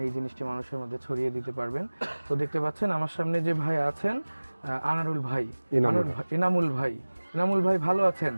এই জিনিসটি মানুষের মধ্যে ছড়িয়ে দিতে পারবেন। তো দেখতে পাচ্ছেন আমার সামনে যে ভাই আছেন, আনারুল ভাই, এনামুল ভাই ভালো আছেন?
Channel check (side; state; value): both; inverted; correlation -1.00